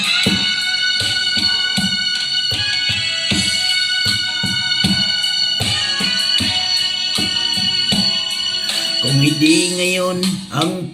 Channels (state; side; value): identical; both; correlation 1.00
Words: Kung hindi ngayon ang